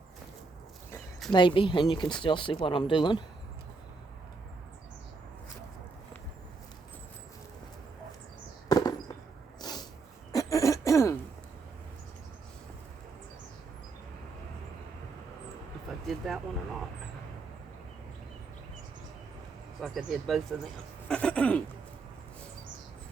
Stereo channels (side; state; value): left; quieter; 4.1 dB